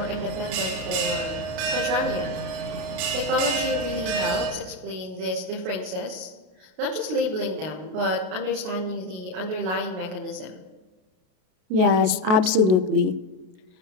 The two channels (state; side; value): late; left; 33 ms